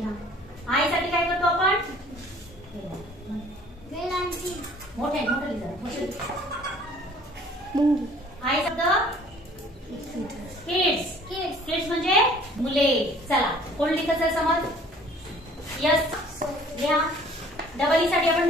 आय साठी काय करतो आपण? मोठे आय शब्द किड्स। किड्स म्हणजे मुले। चला कोण लिहितं समज? यस लिहा। डबल ई साठी आपण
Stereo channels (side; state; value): both; normal; correlation 0.53